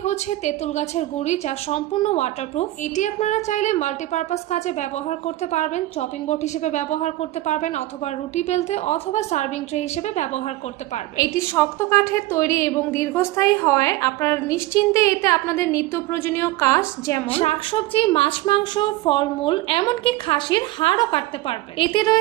হচ্ছে তেঁতুল গাছের গুঁড়ি, যা সম্পূর্ণ ওয়াটারপ্রুফ। এটি আপনারা চাইলে মাল্টিপারপাস কাজে ব্যবহার করতে পারবেন, চপিং বোর্ড হিসেবে ব্যবহার করতে পারবেন অথবা রুটি বেলতে অথবা সার্ভিং ট্রে হিসেবে ব্যবহার করতে পারবেন। এটি শক্ত কাঠের তৈরি এবং দীর্ঘস্থায়ী হয়। আপনারা নিশ্চিন্তে এতে আপনাদের নিত্য প্রয়োজনীয় কাজ যেমন শাকসবজি, মাছ, মাংস, ফলমূল, এমনকি খাসির হাড়ও কাটতে পারবে। এতে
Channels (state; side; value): quieter; left; 17.2 dB